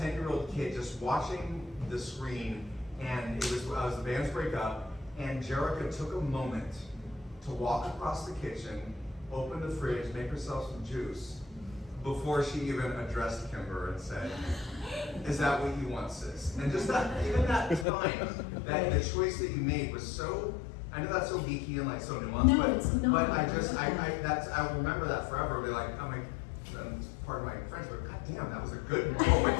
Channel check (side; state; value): right; drops out; at 17.9 s